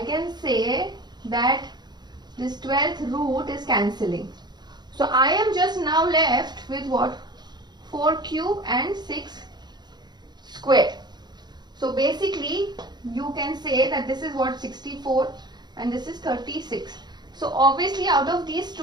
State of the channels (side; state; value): left; late; 0.21 ms